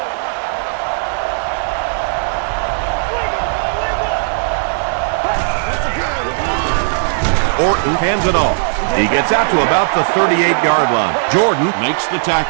Orton hands it off. He gets out to about the 38-yard line. Jordan makes the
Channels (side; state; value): left; silent; 69 dB below the other